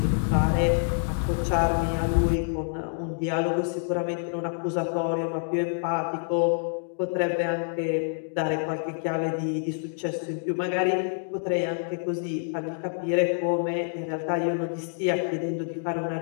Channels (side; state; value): right; silent; digital silence